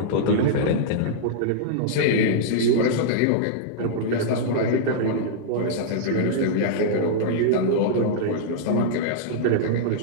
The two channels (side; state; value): both; different; correlation -0.02